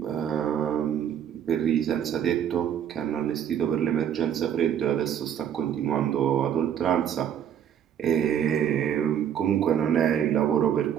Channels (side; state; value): left; quieter; 9.3 dB